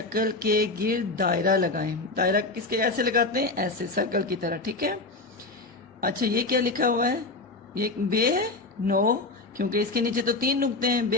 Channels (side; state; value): right; quieter; 3.3 dB